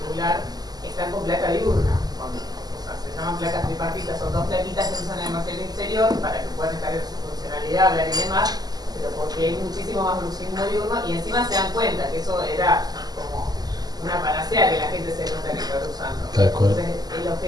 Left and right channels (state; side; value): late; left; 0.19 ms